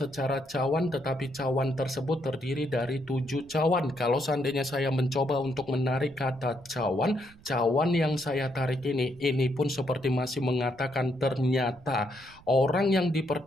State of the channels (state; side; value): noise; right; rumble, 24 dB below the sound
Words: cawan, tetapi cawan tersebut terdiri dari 7 cawan. Kalau seandainya saya mencoba untuk menarik kata cawan yang saya tarik ini pun seperti masih mengatakan ternyata orang yang